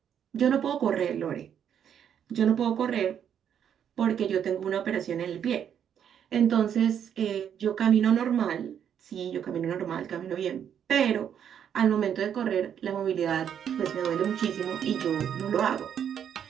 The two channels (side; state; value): left; quieter; 8.8 dB